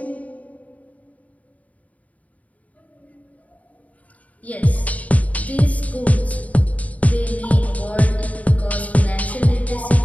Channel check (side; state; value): right; late; 0.070 ms